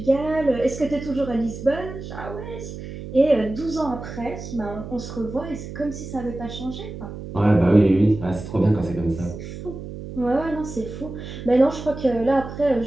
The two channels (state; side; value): noise; right; hum, 10 dB below the sound